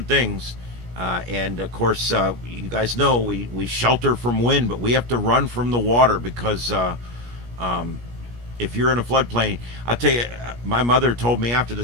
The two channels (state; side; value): late; left; 17 ms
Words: things. And of course, you guys know we shelter from wind, but we have to run from the water because if you're in a floodplain, I'll tell you, my mother told me after